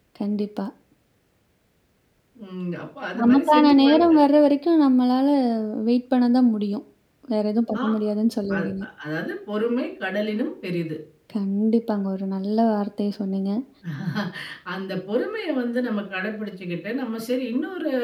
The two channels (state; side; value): identical; both; correlation 1.00